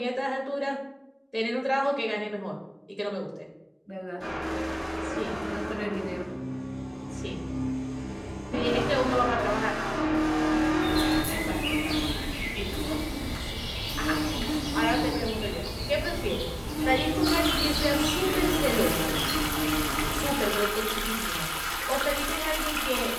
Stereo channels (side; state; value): both; identical; correlation 1.00